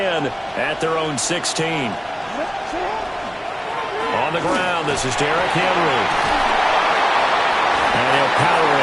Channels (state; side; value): identical; both; correlation 1.00